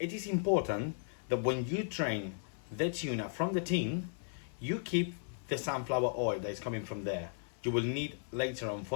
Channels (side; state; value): right; silent; 54 dB below the other